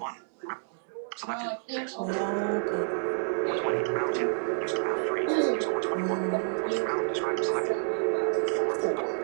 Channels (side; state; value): left; silent; digital silence